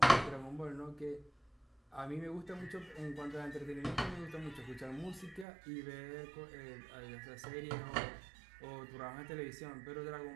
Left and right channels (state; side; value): drops out; left; at 5.5 s